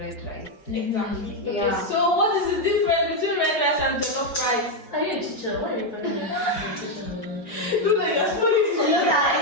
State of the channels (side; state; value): right; late; 4.8 ms